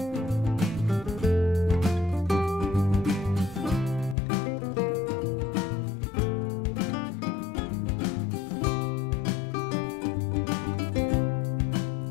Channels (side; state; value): right; drops out; at 4.2 s